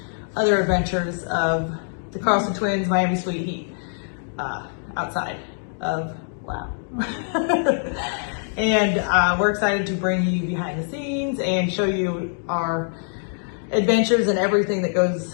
other adventures of the Carlson Twins, Miami Sweet Heat, outside of WoW. And we're excited to bring you behind the scenes and show you our adventures and everything that goes,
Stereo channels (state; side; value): silent; right; digital silence